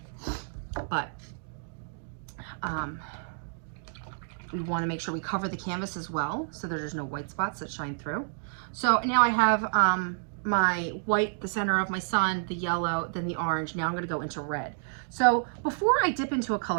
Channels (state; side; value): silent; left; digital silence